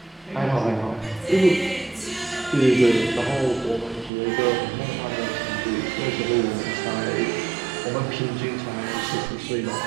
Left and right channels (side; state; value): left; drops out; at 4.1 s